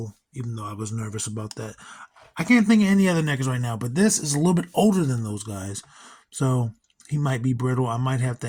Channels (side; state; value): both; identical; correlation 1.00